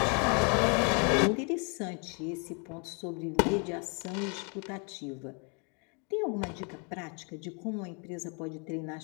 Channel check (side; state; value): right; quieter; 35.4 dB